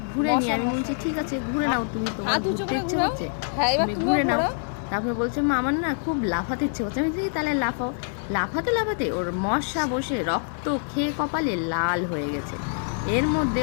ঘুরে নিই। আমি বলছি ঠিক আছে ঘুরে নাও, তুমি তোমার ঘুরতে ইচ্ছে হচ্ছে তুমি ঘুরে নাও। তারপরে বলছে মা আমার না খুব লাফাতে ইচ্ছে হচ্ছে। আমি বলছি তাহলে লাফাও। লাফাতে লাফাতে ওর মশা বসে রক্ত খেয়ে কপালে লাল হয়ে গেছে। এর মধ্যে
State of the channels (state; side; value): silent; right; 56 dB below the other